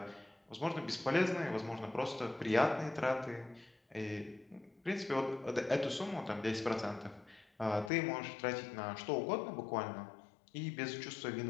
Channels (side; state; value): right; drops out; at 7.9 s